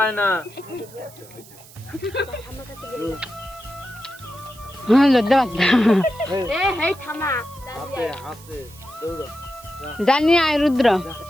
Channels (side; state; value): right; noise; hiss, 21 dB below the sound